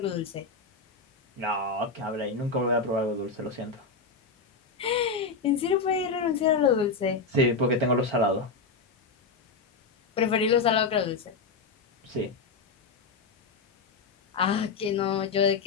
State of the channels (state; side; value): quieter; right; 4.4 dB